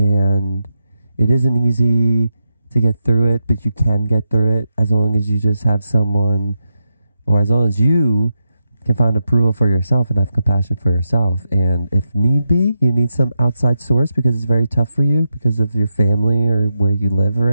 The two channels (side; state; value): both; inverted; correlation -0.87